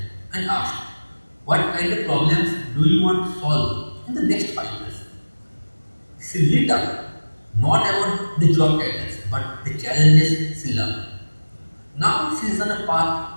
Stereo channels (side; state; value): both; inverted; correlation -1.00